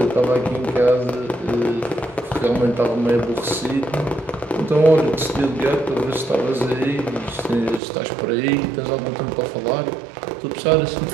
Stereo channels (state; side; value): drops out; left; at 7.8 s